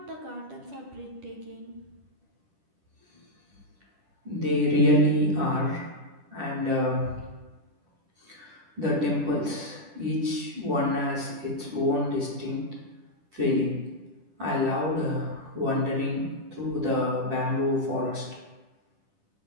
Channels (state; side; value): late; left; 10 ms